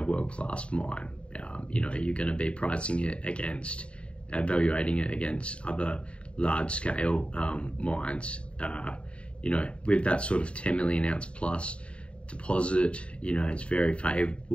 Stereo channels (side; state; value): right; late; 0.059 ms